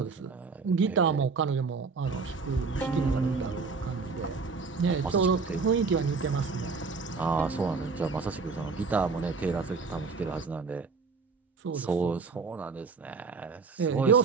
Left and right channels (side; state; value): left; quieter; 4.7 dB